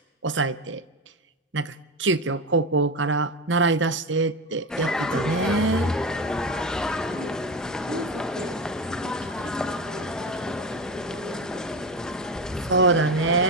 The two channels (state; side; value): normal; both; correlation 0.20